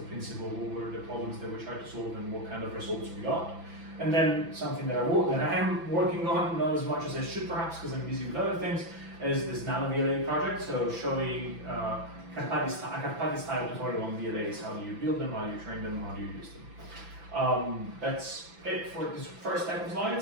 principle, what were the problems that we tried to solve, and what kind of results we got. And then something that I am working on, not as much as I should perhaps because I'm busy with other things, is this nano VLA project. So showing a Carpati-style tutorial on VLAs. How do you build them, how do you train them, how do you use them. That's it for this first type of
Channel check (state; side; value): late; left; 6.0 ms